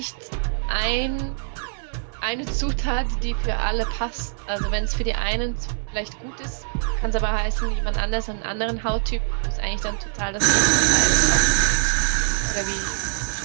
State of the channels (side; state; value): left; silent; 62 dB below the other